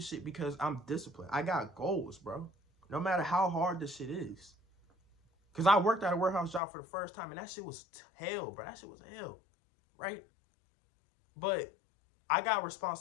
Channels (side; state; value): right; drops out; at 6.6 s